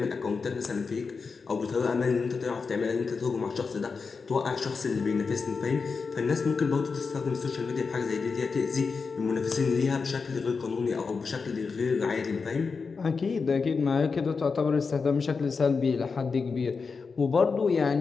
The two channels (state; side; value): quieter; right; 4.9 dB